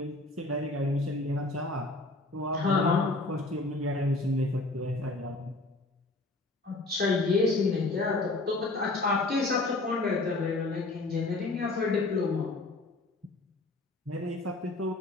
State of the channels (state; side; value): quieter; right; 3.0 dB